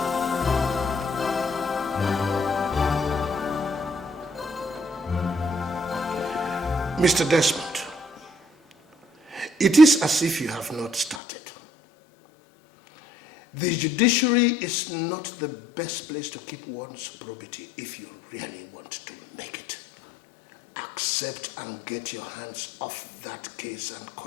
Mr. Desmond, it is as if you have not started. The judiciary is not the best place to keep one's probity if you really want to make it. Accept and get your hands off that case and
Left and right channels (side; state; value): right; drops out; at 11.2 s